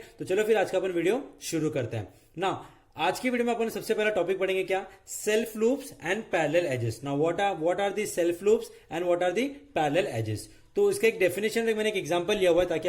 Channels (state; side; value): identical; both; correlation 1.00